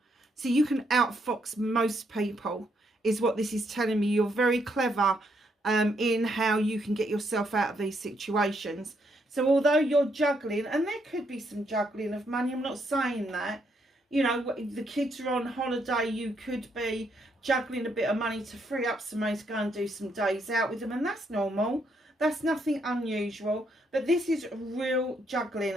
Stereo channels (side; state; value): both; normal; correlation 0.75